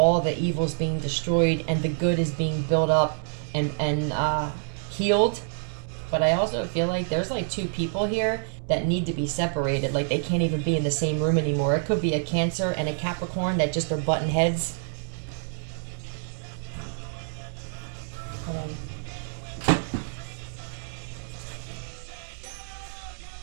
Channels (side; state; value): left; silent; digital silence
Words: the evil's being destroyed, and the good is being built up and healed. But I also feel like there's like two people here that need to be separated. Like they can't even be in the same room anymore. It could be a Cancer and a Capricorn that just are button heads. Hold on.